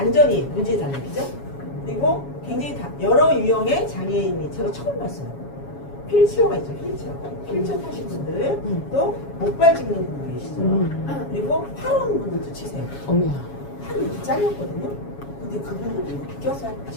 문제잖아요. 그죠? 그리고 굉장히 여러 유형의 장애인이 제가 처음 봤어요. 휠체어가 있죠. 휠체어 타신 분들 또 목발 짚는 분들 계시죠. 그리고 팔원 분들도 치세요. 어머야. 팔이 이렇게 잘렸거든요. 근데 그분들도 이렇게 껴서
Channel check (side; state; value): right; late; 7.2 ms